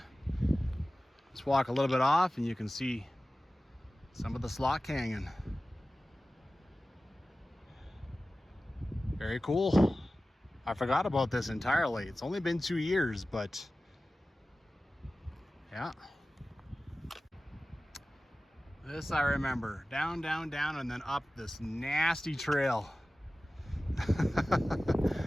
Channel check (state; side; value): normal; both; correlation 0.96